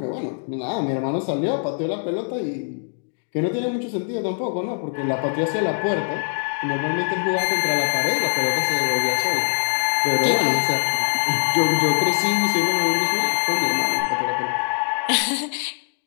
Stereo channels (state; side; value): silent; right; digital silence